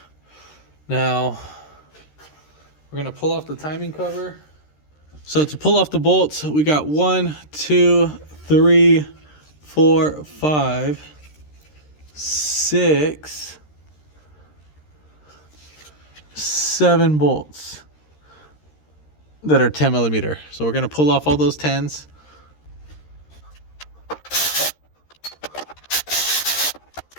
Now, we're gonna pull off the timing cover. So to pull off the bolts, we got 1, 2, 3, 4, 5, 6, 7 bolts that are 10 millimeter. So we're gonna pull off all those 10s.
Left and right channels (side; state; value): right; late; 13 ms